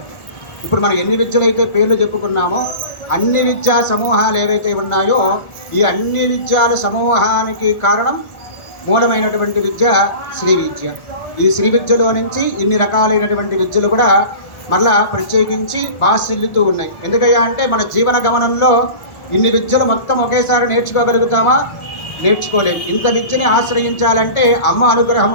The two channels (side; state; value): right; late; 1.5 ms